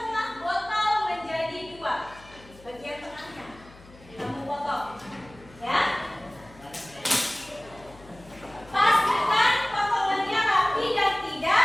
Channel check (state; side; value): noise; left; hum, 22 dB below the sound